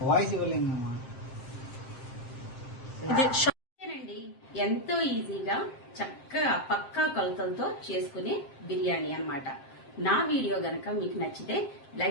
వాయిస్ ఇవ్వలేము. ఎంతో ఈజీగా చక్కగా పక్కా కొలతలతో చేసుకునే బిర్యానీ అన్నమాట. నా వీడియో గనక మీకు నచ్చితే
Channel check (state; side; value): late; right; 7.6 ms